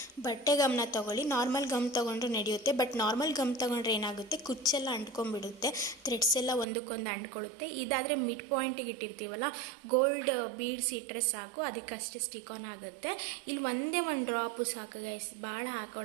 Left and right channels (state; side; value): drops out; left; at 6.7 s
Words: ಬಟ್ಟೆ ಗಮ್ನ ತೊಗೊಳ್ಳಿ. ನಾರ್ಮಲ್ ಗಮ್ ತೊಗೊಂಡ್ರೆ ನಡೆಯುತ್ತೆ, ಬಟ್ ನಾರ್ಮಲ್ ಗಮ್ ತೊಗೊಂಡ್ರೆ ಏನಾಗುತ್ತೆ, ಕುಚ್ಚೆಲ್ಲ ಅಂಟ್ಕೊಂಡ್ಬಿಡುತ್ತೆ, ಥ್ರೆಡ್ಸ್ ಎಲ್ಲ ಒಂದಕ್ಕೊಂದು ಅಂಟ್ಕೊಳ್ಳುತ್ತೆ. ಇದಾದರೆ ಮಿಡ್ ಪಾಯಿಂಟಿಗೆ ಇಟ್ಟಿರ್ತೀವಲ್ಲ, ಗೋಲ್ಡ್ ಬೀಡ್ಸ್ ಇಟ್ಟರೆ ಸಾಕು, ಅದಕ್ಕಷ್ಟೇ ಸ್ಟಿಕ್ ಆನ್ ಆಗುತ್ತೆ. ಇಲ್ಲಿ ಒಂದೇ ಒಂದು ಡ್ರಾಪು ಸಾಕು ಗೈಸ್, ಭಾಳ